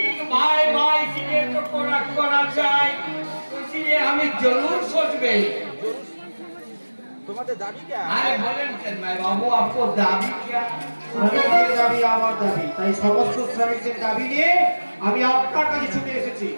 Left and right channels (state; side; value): inverted; both; correlation -1.00